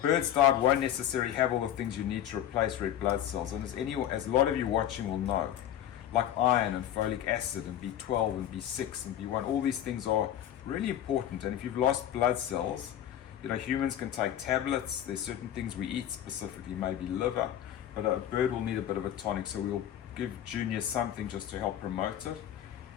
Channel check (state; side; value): quieter; right; 11.0 dB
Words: diet won't necessarily have all the things you need to replace red blood cells. And as a lot of you watching will know, like iron and folic acid and B12 and B6 and B1. All these things are really important. And if you've lost blood cells, humans can take tablets. There's certain things we eat, specifically maybe liver, but a bird will need a bit of a tonic. So we'll give Junior something just to help promote it.